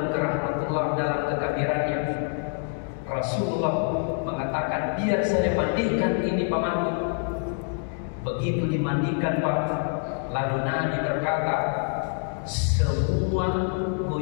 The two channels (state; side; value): silent; right; 56 dB below the other